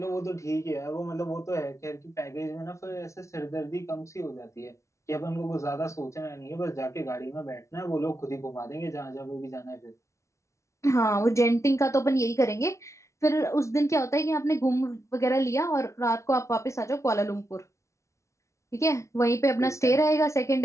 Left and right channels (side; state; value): right; late; 0.14 ms